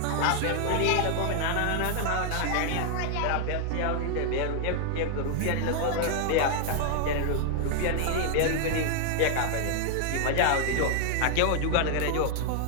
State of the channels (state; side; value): different; both; correlation 0.00